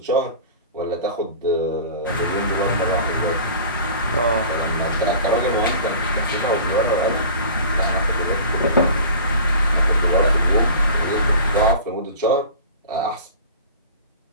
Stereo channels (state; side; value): inverted; both; correlation -0.40